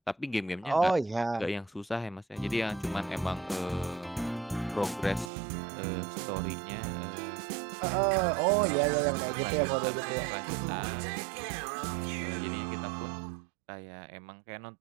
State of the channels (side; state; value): left; drops out; at 5.3 s